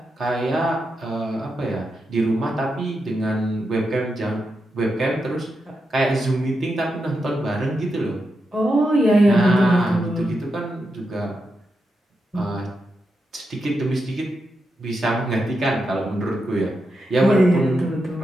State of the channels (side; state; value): both; normal; correlation 0.86